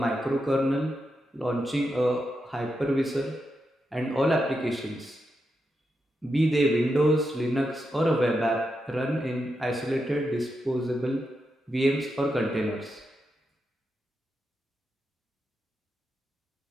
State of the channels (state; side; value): normal; both; correlation 0.86